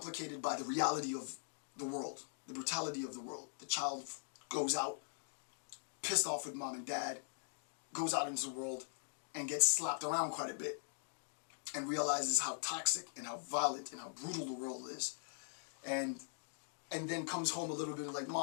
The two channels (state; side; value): silent; right; digital silence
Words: by the reality of the world, the brutality of the world. The child goes out, pissed off with mom and dad, goes out into the world and gets slapped around quite a bit and realizes how toxic and how violent and how brutal the world is. And then comes home a little bit like,